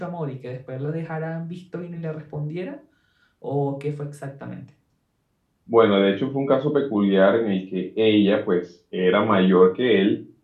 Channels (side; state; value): both; identical; correlation 1.00